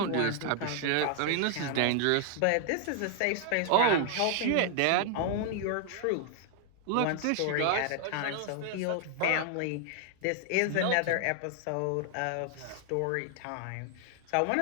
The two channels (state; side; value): different; both; correlation 0.00